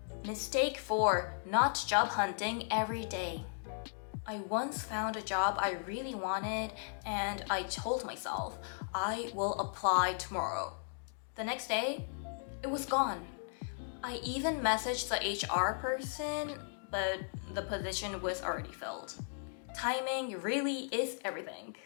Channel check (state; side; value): silent; right; digital silence